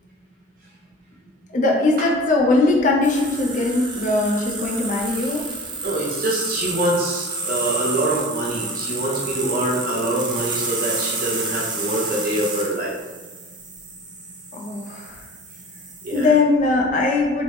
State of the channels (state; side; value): normal; both; correlation 0.39